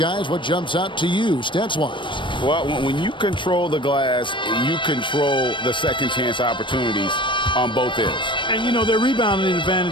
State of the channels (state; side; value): late; right; 0.24 ms